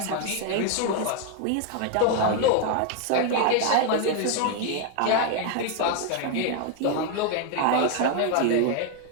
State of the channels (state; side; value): different; both; correlation 0.00